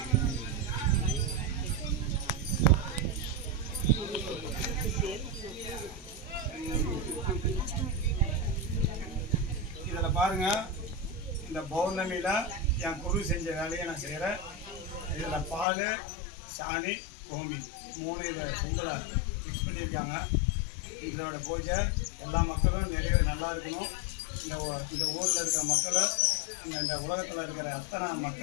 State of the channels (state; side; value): drops out; right; at 15.7 s